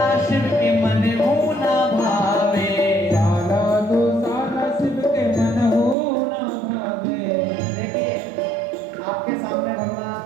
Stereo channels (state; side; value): drops out; left; at 6.0 s